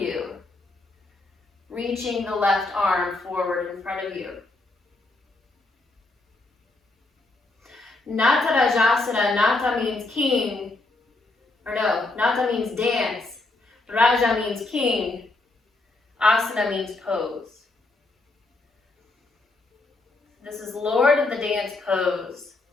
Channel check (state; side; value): quieter; right; 3.2 dB